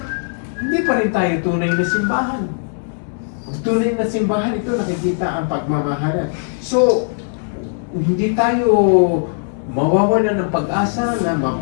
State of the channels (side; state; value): right; silent; 65 dB below the other